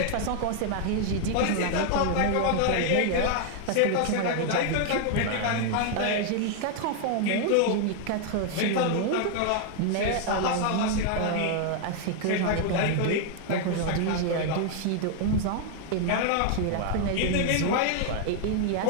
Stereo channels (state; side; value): different; both; correlation 0.00